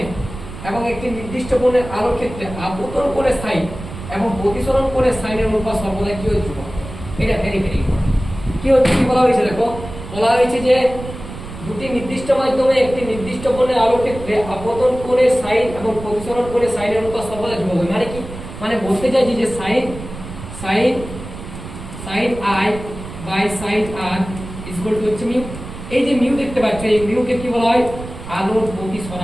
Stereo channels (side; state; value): right; noise; rumble, 12 dB below the sound